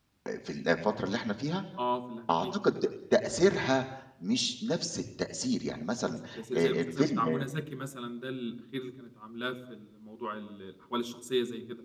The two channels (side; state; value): both; identical; correlation 1.00